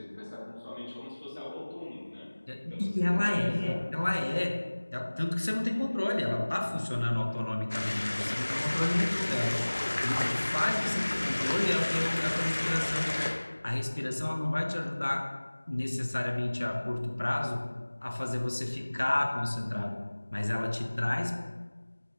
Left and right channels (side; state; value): both; inverted; correlation -1.00